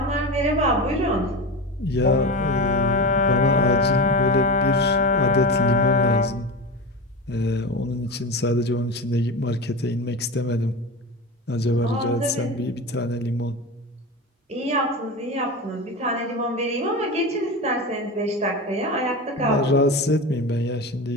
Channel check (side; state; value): both; normal; correlation 0.24